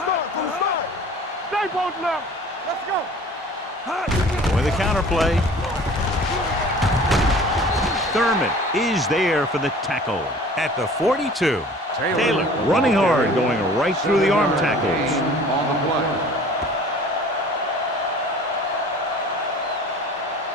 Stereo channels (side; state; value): both; normal; correlation 0.46